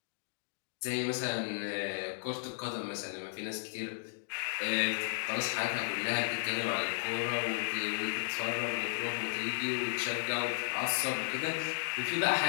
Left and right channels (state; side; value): silent; right; digital silence